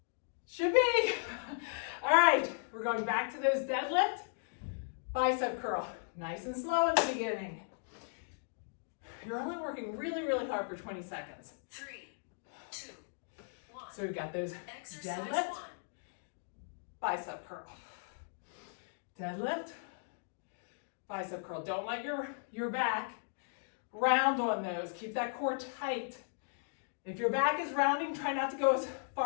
Should be. All right, we're going back to those deadlift, bicep curl. Nice and slow in the beginning. You're only working really, really hard for 20 seconds. 3, 2, 1. So we've got those Exercise deadlift, 1. bicep curl. Deadlift, bicep curl. Don't let your back round on those. Keep that core tight. If your back is rounding, try not to go as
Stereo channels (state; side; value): silent; right; digital silence